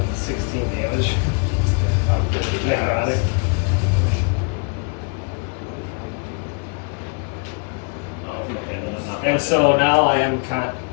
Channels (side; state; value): right; quieter; 37.7 dB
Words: 16 damage. Necrotic. Oh, okay. And so now I have